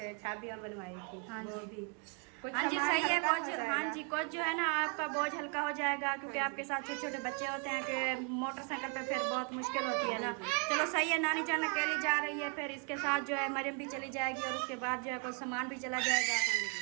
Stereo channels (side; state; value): left; quieter; 38.6 dB